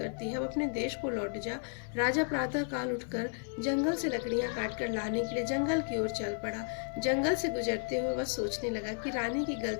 है, अब अपने देश को लौट जा। राजा प्रातः काल उठकर जंगल से लकड़ियां काटकर लाने के लिए जंगल की ओर चल पड़ा। जंगल से गुजरते हुए वह सोचने लगा कि रानी की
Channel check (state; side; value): silent; right; 56 dB below the other